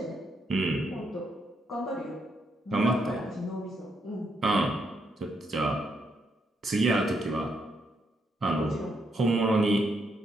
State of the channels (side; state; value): both; normal; correlation 0.78